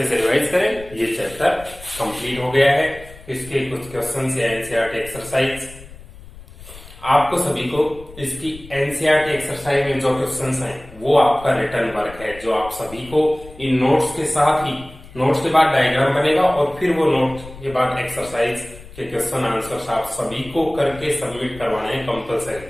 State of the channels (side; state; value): left; noise; rumble, 18 dB below the sound